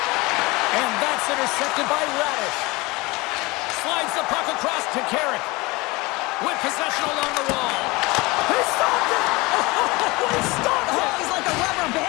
And that's intercepted by Radish. Slides the puck across to Carrick. With possession along the wall. He stopped it! Oh, he stopped it! Oh, he's like a rubber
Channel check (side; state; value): right; quieter; 23.4 dB